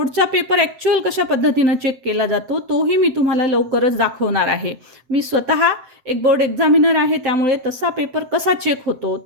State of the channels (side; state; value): left; late; 7.7 ms